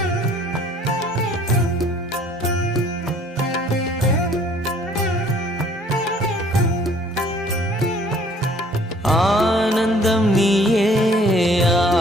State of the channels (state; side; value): normal; both; correlation 0.56